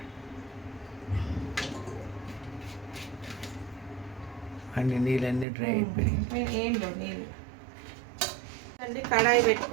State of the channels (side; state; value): left; drops out; at 5.5 s